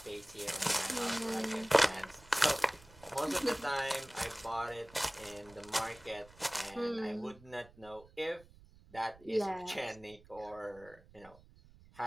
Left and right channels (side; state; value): right; noise; rumble, 23 dB below the sound